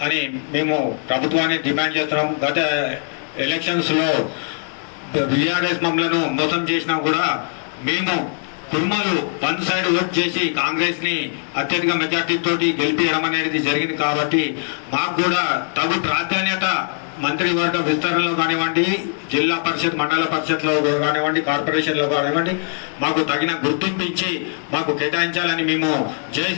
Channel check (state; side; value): silent; right; 62 dB below the other